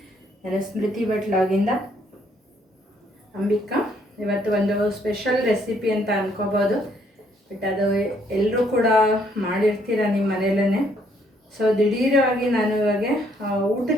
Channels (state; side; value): normal; both; correlation 0.68